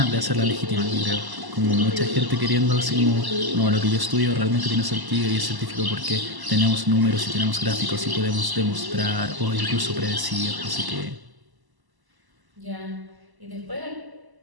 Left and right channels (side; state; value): left; late; 1.0 ms